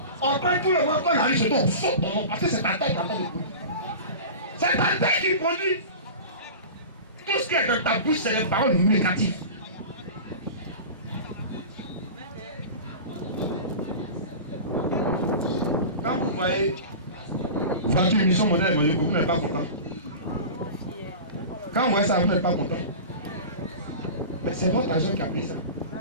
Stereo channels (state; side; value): inverted; both; correlation -0.32